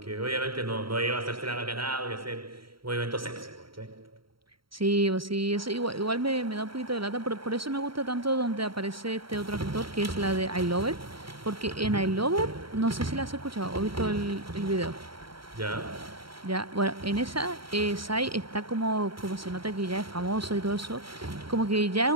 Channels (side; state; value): left; late; 0.74 ms